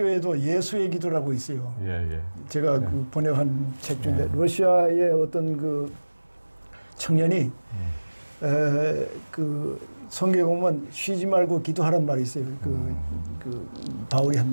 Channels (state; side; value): inverted; both; correlation -1.00